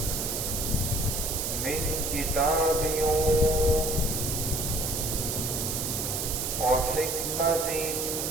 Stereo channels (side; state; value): right; noise; hiss, 2 dB below the sound